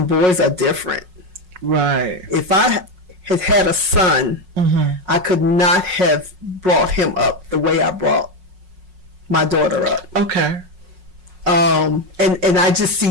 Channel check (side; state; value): left; late; 5.5 ms